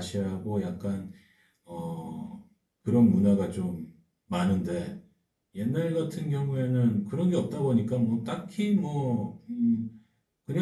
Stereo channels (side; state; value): both; identical; correlation 1.00